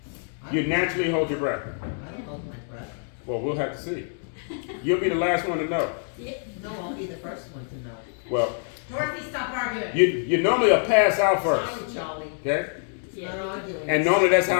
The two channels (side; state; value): right; silent; 61 dB below the other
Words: you naturally hold your breath. I don't hold my breath. Well, we'll have to see. You'll be the last one to know. No, I'll be the first one to know. Well, Dorothy, stop arguing. you normally will pass out first. Sorry, Charlie. Okay? Not arguing. And normally that's